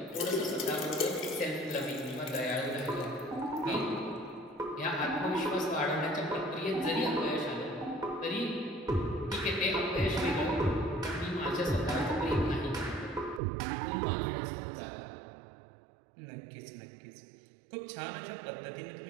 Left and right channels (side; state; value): left; drops out; at 13.4 s